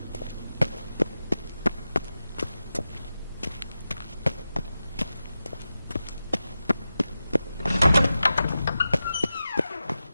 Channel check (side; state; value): both; inverted; correlation -0.93